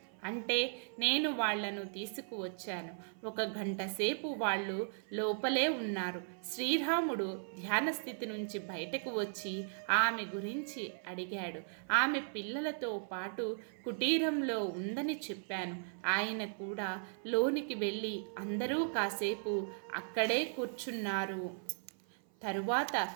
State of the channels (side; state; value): left; silent; 53 dB below the other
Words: అంటే నేను వాళ్లను తీసుకువచ్చాను. 1 గంట సేపు వాళ్ళు లోపలే ఉన్నారు. శ్రీరాముడు ధ్యాన స్థితి నుంచి బయటకు వచ్చి ఆమె గురించి అడిగాడు. ఆమె పిల్లలతో పాటు కుటీరంలో ఉందని చెప్పాను. ఆయన కూడా లోనికి వెళ్ళి అందరూ కాసేపు అక్కడే కూర్చున్నారు. తరువాత